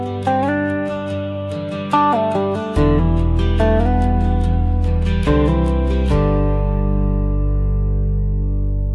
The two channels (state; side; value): identical; both; correlation 1.00